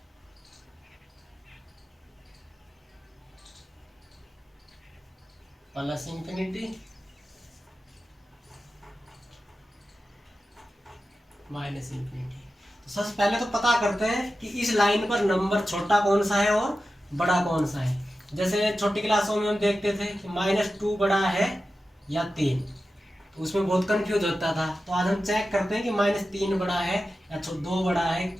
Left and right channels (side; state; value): both; normal; correlation 0.93